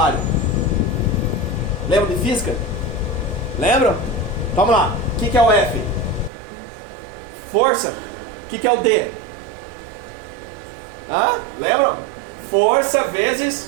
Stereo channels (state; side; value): drops out; left; at 6.3 s